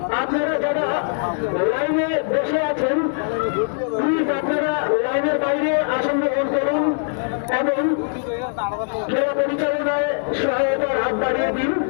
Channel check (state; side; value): silent; right; digital silence